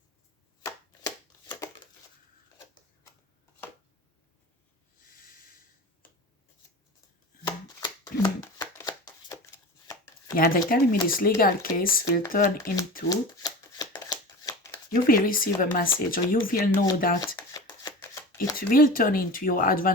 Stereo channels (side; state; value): both; normal; correlation 0.33